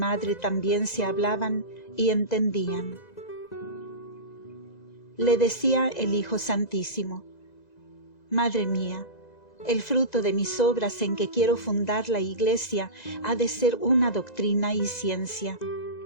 también se hablaban y entendían. Le decía el Hijo Santísimo: Madre mía, el fruto de mis obras en que quiero fundar la Iglesia ha de ser una doctrina y ciencia,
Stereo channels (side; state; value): right; late; 2.0 ms